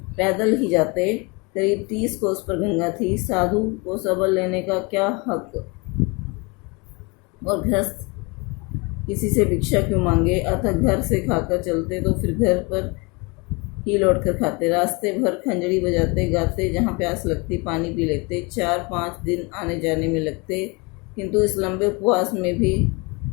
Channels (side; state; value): right; quieter; 28.6 dB